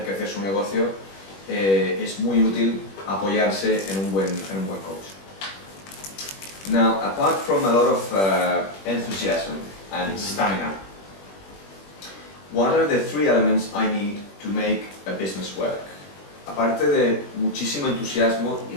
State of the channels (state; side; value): late; right; 21 ms